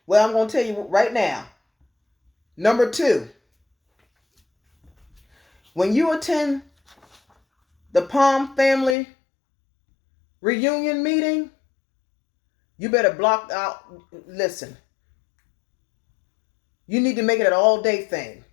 Well, I'm going to tell you right now. Number 2, when you attend the Palm family reunion meeting, you better block out. Listen, you need to make it an all-day thing.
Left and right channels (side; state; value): right; drops out; at 9.0 s